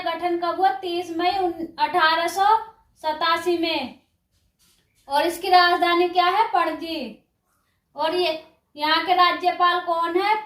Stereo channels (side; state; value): both; identical; correlation 1.00